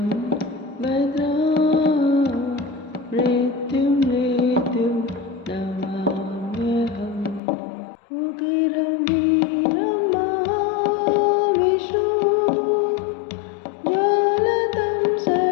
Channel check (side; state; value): right; drops out; at 7.4 s